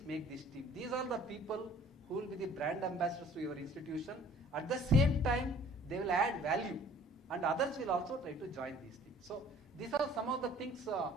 make this team. These are the people who will be the brand ambassadors to your institution. At the same time, they will add value, and others will also try to join these things. So these are some of the things.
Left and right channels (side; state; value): both; normal; correlation 0.53